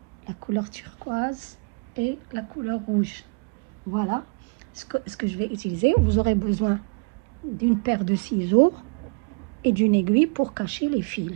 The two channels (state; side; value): quieter; left; 33.6 dB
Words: la couleur turquoise et la couleur rouge. Voilà ce que je vais utiliser. Vous aurez besoin d'une paire de ciseaux et d'une aiguille pour cacher les